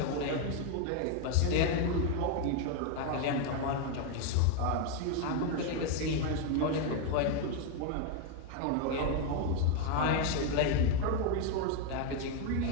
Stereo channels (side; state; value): both; different; correlation 0.01